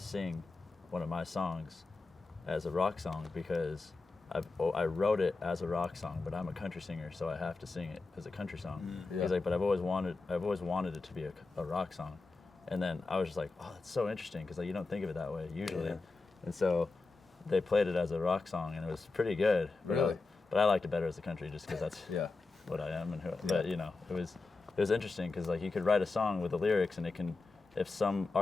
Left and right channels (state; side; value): quieter; right; 3.8 dB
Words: one of my songs as a rock song because I wrote it as a rock song, but I'm a country singer, so I have to sing it as a country song. Yeah. He's like, but I've always wanted it to be a rock song. And then I was just like, oh, that's so interesting because like you don't think of it that way usually. Yeah. And so they played it as a rock song, and it was pretty good. Really? But I liked it better as a country just because that's Yeah. what I am and who. But it was interesting because like you could write a song with the lyrics, and it can, if some